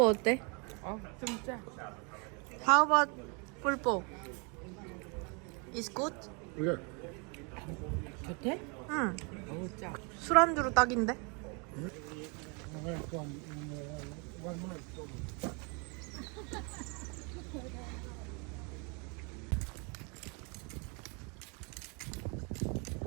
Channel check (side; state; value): left; quieter; 33.4 dB